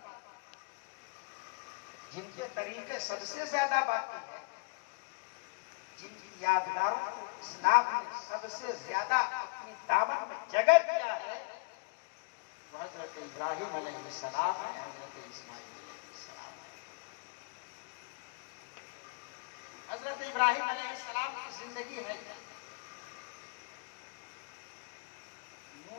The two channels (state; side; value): quieter; right; 33.7 dB